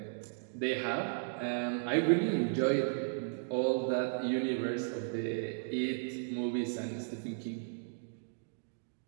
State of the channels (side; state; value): left; silent; digital silence